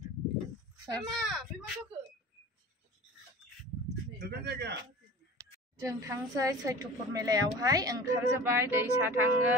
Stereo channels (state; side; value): normal; both; correlation 0.39